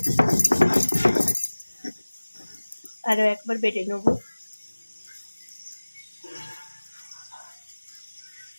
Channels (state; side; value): inverted; both; correlation -1.00